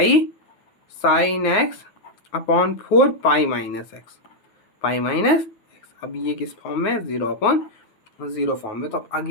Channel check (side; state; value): right; late; 9.4 ms